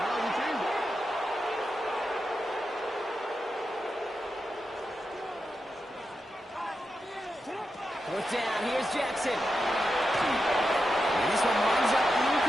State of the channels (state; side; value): normal; both; correlation 0.88